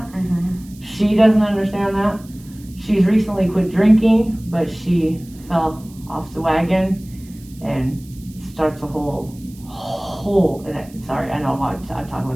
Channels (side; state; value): right; noise; hiss, 24 dB below the sound